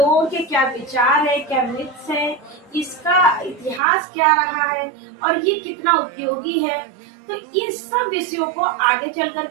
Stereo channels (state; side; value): drops out; left; at 3.8 s